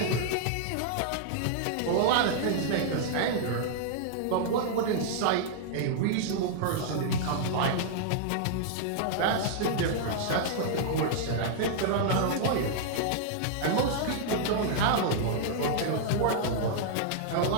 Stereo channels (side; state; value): both; different; correlation -0.01